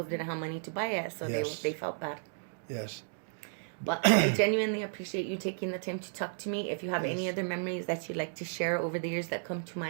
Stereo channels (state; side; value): silent; left; digital silence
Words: didn't have money to buy it, so Yes. they felt bad. Yes. But I genuinely appreciate you taking the time to talk to me. If you have any Yes. other memories that you'd like to share over the years that come to